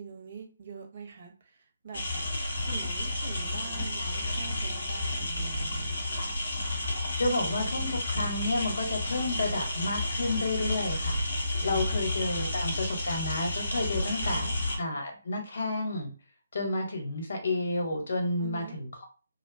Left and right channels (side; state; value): both; inverted; correlation -0.79